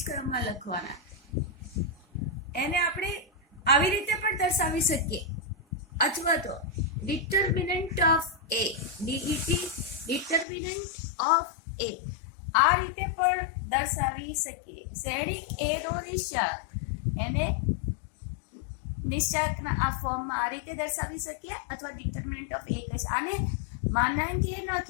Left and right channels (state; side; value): drops out; right; at 10.5 s